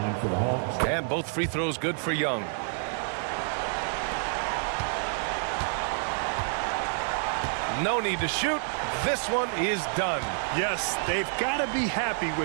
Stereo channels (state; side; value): silent; left; 59 dB below the other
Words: for the Hawks. And both free throws good for Young. No need to shoot. This one is done. Yes, they've got to be happy